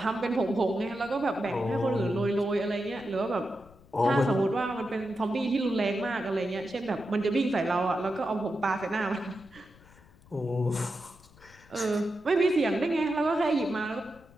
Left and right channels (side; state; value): left; noise; rumble, 25 dB below the sound